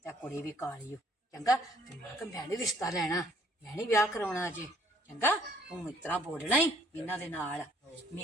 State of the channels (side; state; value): both; normal; correlation 0.61